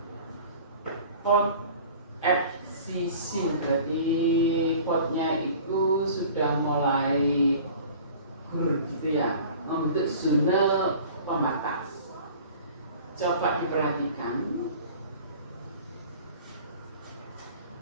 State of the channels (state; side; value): inverted; both; correlation -0.44